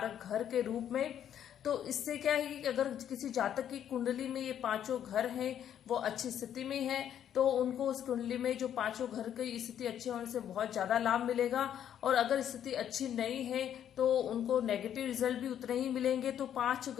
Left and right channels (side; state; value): right; quieter; 9.9 dB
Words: घर के रूप में, तो इससे क्या है कि अगर किसी जातक की कुंडली में ये 5 घर हैं वो अच्छी स्थिति में है तो उनको उस कुंडली में जो 5 घर की स्थिति अच्छी होने से बहुत ज्यादा लाभ मिलेगा और अगर स्थिति अच्छी नहीं है तो उनको नेगेटिव रिजल्ट भी उतने ही मिलेंगे। तो 5